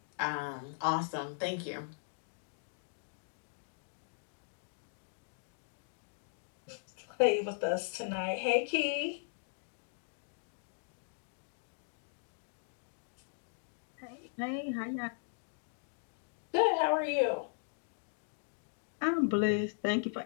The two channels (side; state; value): right; silent; digital silence